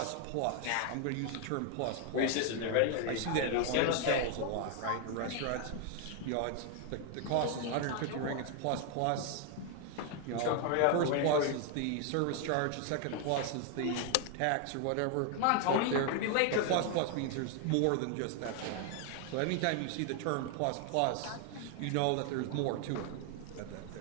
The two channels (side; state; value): both; different; correlation 0.00